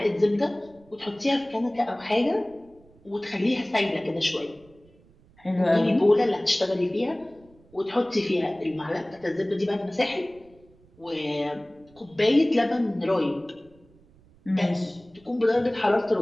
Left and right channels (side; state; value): right; noise; rumble, 28 dB below the sound